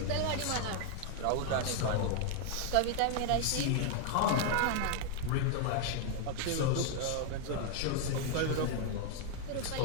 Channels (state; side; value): different; both; correlation 0.00